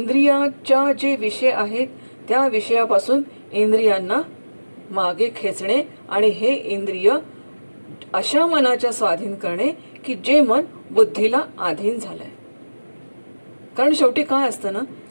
जे विषय आहेत त्या विषयापासून इंद्रियांना मागे खेचणे आणि हे इंद्रिय अशा मनाच्या स्वाधीन करणे की जे मन बुद्धीला अधीन झालंय. कारण शेवटी काय असतं ना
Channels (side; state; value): both; inverted; correlation -1.00